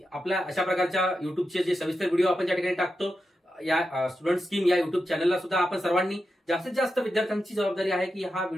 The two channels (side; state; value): both; normal; correlation 0.88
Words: आपल्या अशा प्रकारच्या युट्यूबचे जे सविस्तर व्हिडिओ आपण ज्या ठिकाणी टाकतो, या स्टुडंट स्कीम या युट्यूब चॅनलला सुद्धा आपण सर्वांनी जास्तीत जास्त विद्यार्थ्यांची जबाबदारी आहे की हा